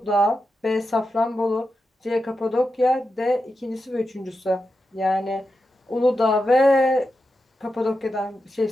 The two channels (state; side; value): normal; both; correlation 0.89